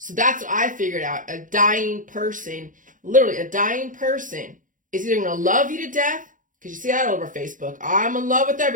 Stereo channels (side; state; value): left; late; 0.38 ms